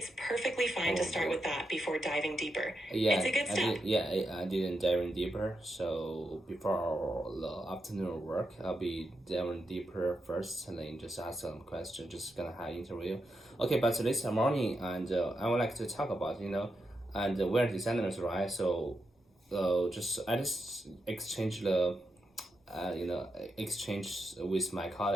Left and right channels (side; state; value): both; normal; correlation 0.86